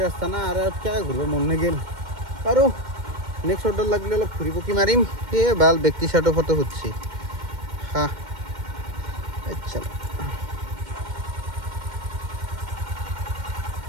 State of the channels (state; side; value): late; left; 2.1 ms